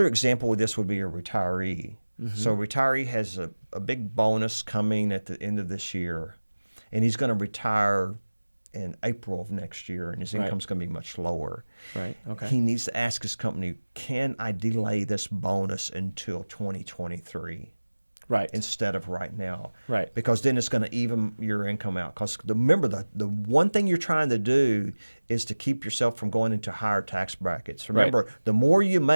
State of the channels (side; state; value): both; inverted; correlation -1.00